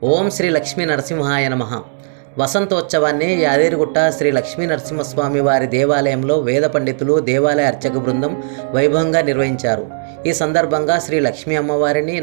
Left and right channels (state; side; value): silent; left; digital silence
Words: ఓం శ్రీ లక్ష్మీ నరసింహాయ నమః. వసంతోత్సవాన్ని యాదగిరిగుట్ట శ్రీ లక్ష్మీ నరసింహస్వామి వారి దేవాలయంలో వేద పండితులు, దేవాలయ అర్చక బృందం వైభవంగా నిర్వహించారు. ఈ సందర్భంగా శ్రీ లక్ష్మీ అమ్మవారిని,